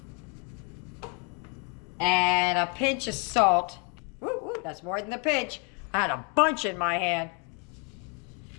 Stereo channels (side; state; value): right; quieter; 35.9 dB